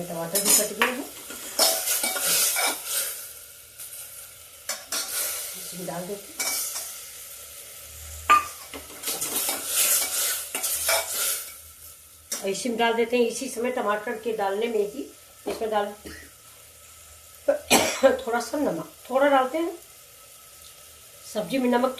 टमाटर भी कट गए हैं, इसमें डाल देते हैं। इसी में डाल देते हैं, इसी समय टमाटर के डालने में ही इसमें डाल थोड़ा सा नमक, थोड़ा डालते हैं। सब्जी में नमक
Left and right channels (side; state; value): both; identical; correlation 1.00